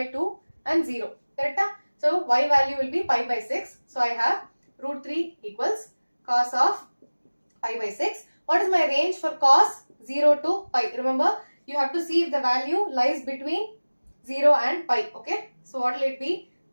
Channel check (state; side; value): inverted; both; correlation -1.00